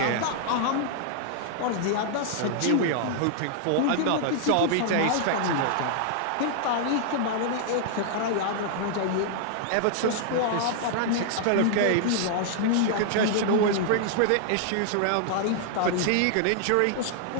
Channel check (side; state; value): both; different; correlation -0.01